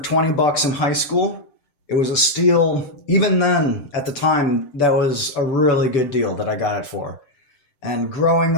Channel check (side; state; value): right; late; 7.7 ms